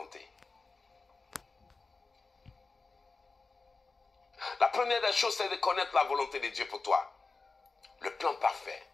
La première des choses, c'est de connaître la volonté de Dieu pour toi. Le plan parfait,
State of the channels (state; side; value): quieter; right; 4.0 dB